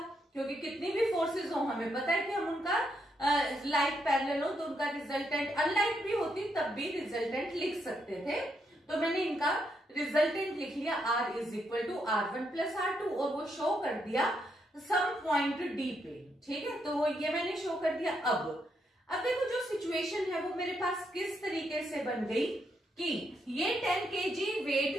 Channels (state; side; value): normal; both; correlation 0.78